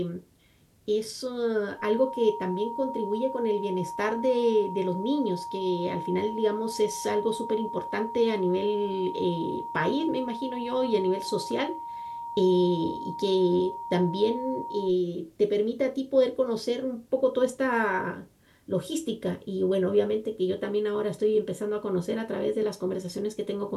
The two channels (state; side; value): identical; both; correlation 1.00